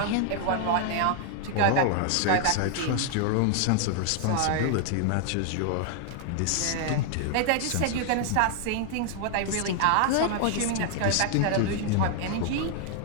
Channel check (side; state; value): both; different; correlation 0.00